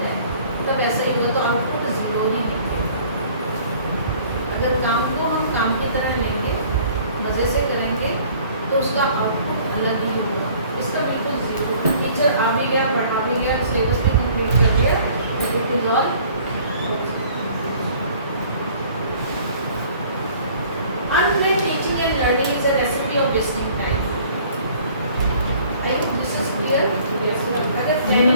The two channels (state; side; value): inverted; both; correlation -0.54